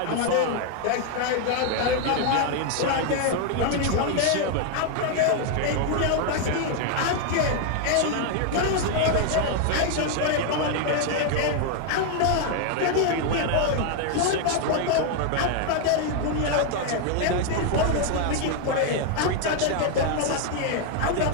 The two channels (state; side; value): different; both; correlation 0.00